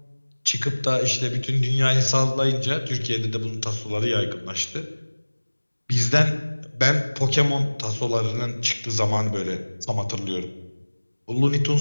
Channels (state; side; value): inverted; both; correlation -1.00